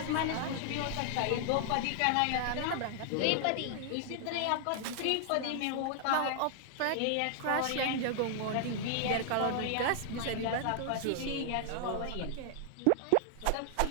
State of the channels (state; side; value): different; both; correlation 0.00